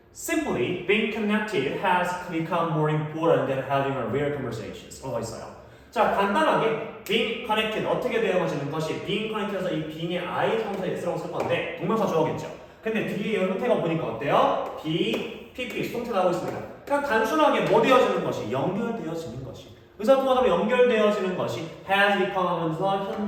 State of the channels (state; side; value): identical; both; correlation 1.00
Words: Simply, being connected has become more important than having a real conversations. 라고 있어요. 자, 간단하게 being connected 어떻게 되어지는 것이 being connected에서 이 being의 I 성사 S라고 쓸 건데 동명사 주어겠죠. 근데 뒤에 형태가 보니까 어때요? be, pp, 수동태 나오고 있습니다. 그냥 단순하게 뭐 되어지는 것이? 연결되어지는 것이. 의사소통하다 연결되어지는 것이 has become 하면서